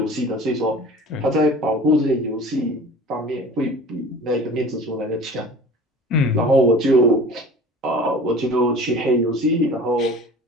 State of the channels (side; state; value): both; normal; correlation 0.41